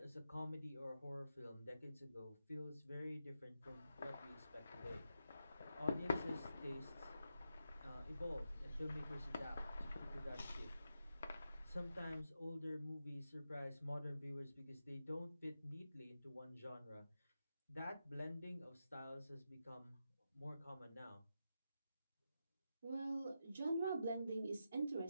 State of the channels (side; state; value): both; inverted; correlation -0.87